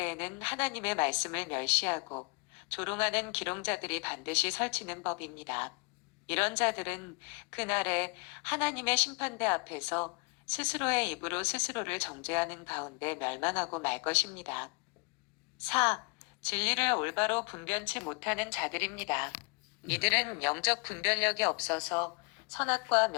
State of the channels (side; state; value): right; quieter; 30.9 dB